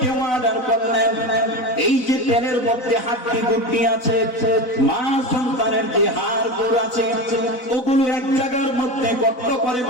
অর্ডার করলেন, এই যে তেলের মধ্যে হাড্ডি গুড্ডি আছে, মা সন্তানের যে হাড় গোড় আছে, ওগুলো এক জায়গার মধ্যে গর্ত করে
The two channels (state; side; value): late; right; 4.0 ms